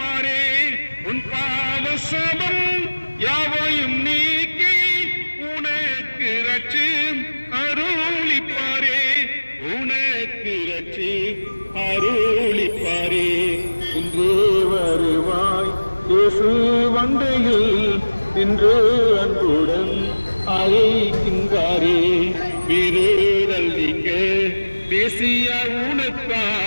உன் பாவ சாபம் யாவையும் நீக்கி உனக்கு ரட்சி அருளிப்பாரே. உனக்கு ரட்சி அருளிப்பாரே. இன்றே வருவாய் இயேசு வண்டையில் இன்று அன்புடன் அழைக்கின்றாரே. வீரேடல் நீங்க பேசிய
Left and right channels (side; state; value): both; inverted; correlation -1.00